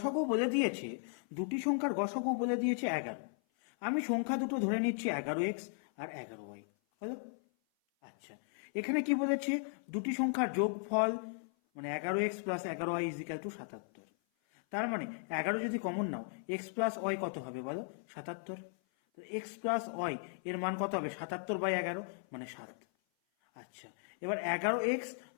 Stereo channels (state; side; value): silent; right; 54 dB below the other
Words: বলে দিয়েছে, দুটি সংখ্যার গসাগু বলে দিয়েছে 11। আমি সংখ্যা দুটো ধরে নিচ্ছি 11x আর 11y। হলো? আচ্ছা, এখানে কি বলেছে? দুটি সংখ্যার যোগফল মানে 11x plus 11y is equal to 77। তার মানে 11 যদি কমন নাও, x প্লাস ওয়াই কত হবে বলো? 77। তো x প্লাস ওয়াই এর মান কত হবে? 77/11 মানে 7। আচ্ছা, এবার 11x